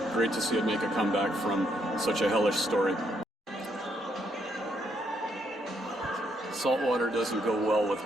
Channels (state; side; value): normal; both; correlation 0.73